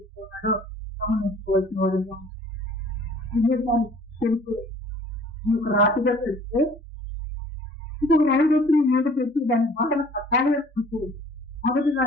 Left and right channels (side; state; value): both; normal; correlation 0.53